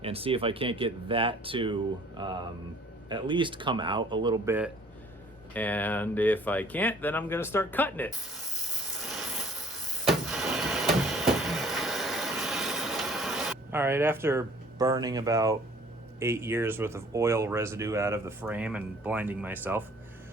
and see if I can't get that to at least come out a little bit. And if I can't, then I'm gonna start cutting it. All right, after burning about 8 years worth of oil residue out of the frame and blinding myself,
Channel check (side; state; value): both; normal; correlation 0.54